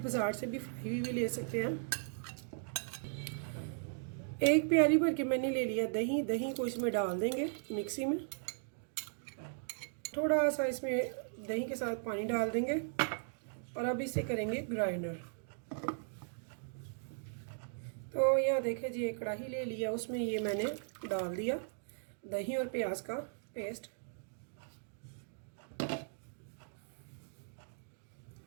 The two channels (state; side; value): silent; left; digital silence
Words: बाज़ार से भी फ्राई हुई भी ले सकते हैं। एक प्याली भर के मैंने ले लिया दही। दही को इसमें डाल देंगे मिक्सी में। थोड़ा सा इसमें दही के साथ पानी डाल देंगे और अब इसे करेंगे ग्राइंडर। तो यह देखें जी, एक कढ़ाई ले लिया, उसमें ये मैंने डाल दिया दही और प्याज का पेस्ट।